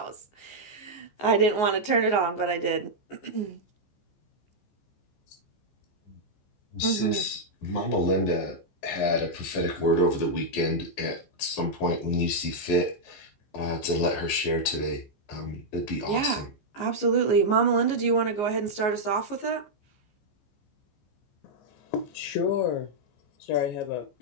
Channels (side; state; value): right; late; 14 ms